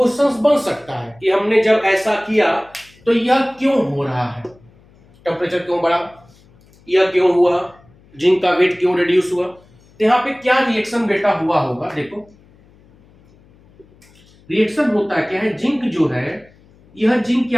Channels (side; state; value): left; noise; hum, 29 dB below the sound